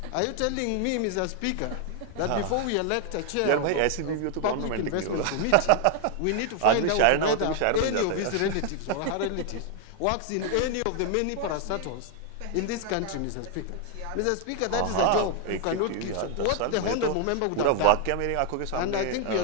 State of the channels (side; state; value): both; different; correlation 0.01